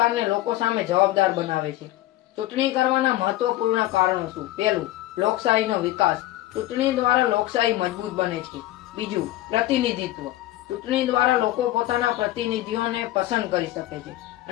લોકો સામે જવાબદાર બનાવે છે. ચૂંટણી કરવાના મહત્વપૂર્ણ કારણો શું? પહેલું, લોકશાહીનો વિકાસ. ચૂંટણી દ્વારા લોકશાહી મજબૂત બને છે. બીજું, પ્રતિનિધિત્વ. ચૂંટણી દ્વારા લોકો પોતાના પ્રતિનિધિઓને પસંદ કરી શકે છે.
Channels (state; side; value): quieter; right; 15.7 dB